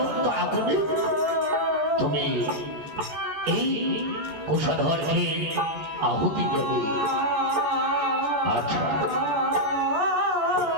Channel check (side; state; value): left; late; 14 ms